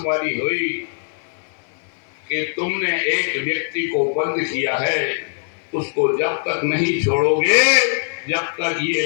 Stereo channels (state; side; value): silent; right; 57 dB below the other